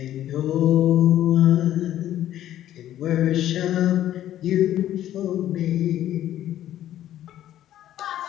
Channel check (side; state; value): right; quieter; 12.3 dB